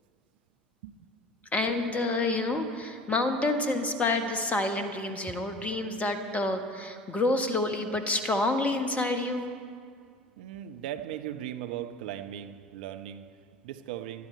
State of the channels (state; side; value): normal; both; correlation 0.41